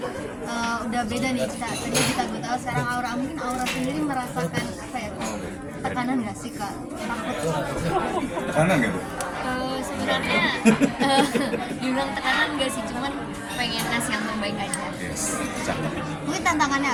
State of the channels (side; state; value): both; identical; correlation 1.00